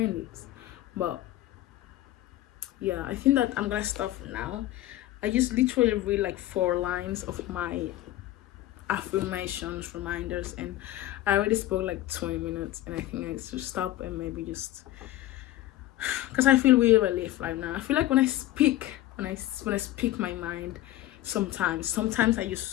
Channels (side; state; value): right; quieter; 14.9 dB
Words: it, but yeah, I think that I'm gonna stop now. I just literally read like 4 lines of my affirmations, reminders, and I already spoke like 20 minutes, and I think I should stop and maybe just, because I feel really relief right now. I feel like when I speak my mind, sometimes I